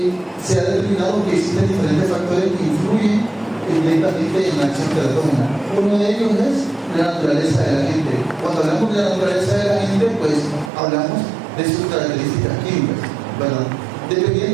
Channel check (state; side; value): drops out; left; at 10.7 s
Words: se ha determinado que existen diferentes factores que influyen directamente en la acción teratógena. Uno de ellos es la naturaleza de la gente. Cuando hablamos de la naturaleza de la gente, pues hablamos de sus características químicas, ¿verdad?